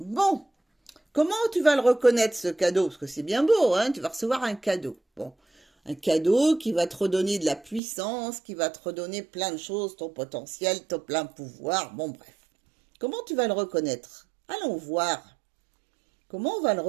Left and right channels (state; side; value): drops out; left; at 7.8 s